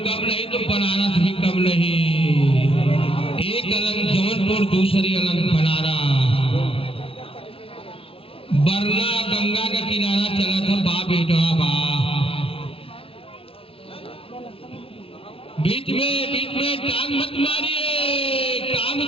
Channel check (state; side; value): late; right; 0.27 ms